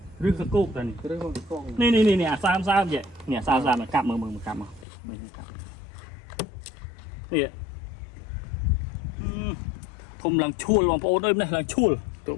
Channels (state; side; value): drops out; right; at 4.9 s